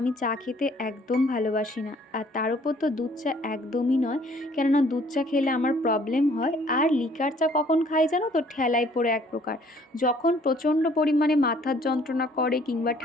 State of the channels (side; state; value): both; normal; correlation 0.59